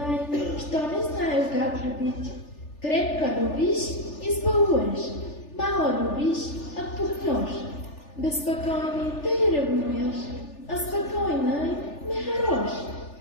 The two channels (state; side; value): late; right; 3.4 ms